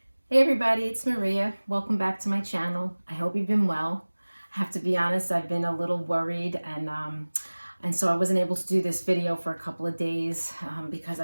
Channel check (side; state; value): both; inverted; correlation -1.00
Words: Hey everybody, it's Maria. Welcome back to my channel. I hope you've been well. I have to be honest, I've been a little worried and so I wasn't able to do this video for a couple of days because